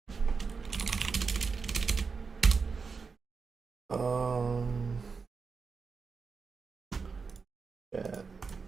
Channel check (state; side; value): quieter; left; 5.0 dB